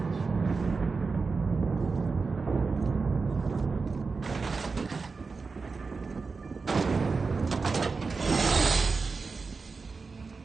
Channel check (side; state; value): left; quieter; 4.5 dB